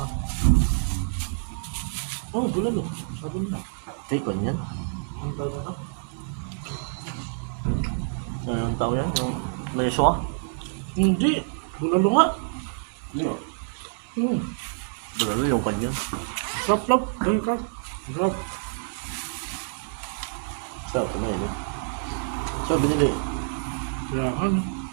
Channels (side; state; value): left; silent; digital silence